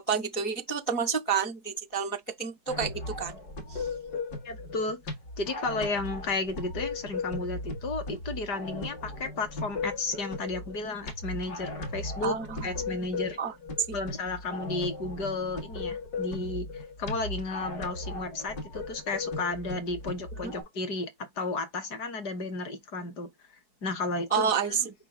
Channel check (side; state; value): right; late; 4.7 ms